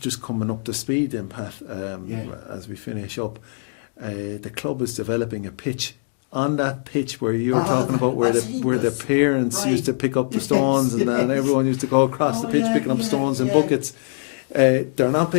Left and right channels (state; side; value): silent; right; digital silence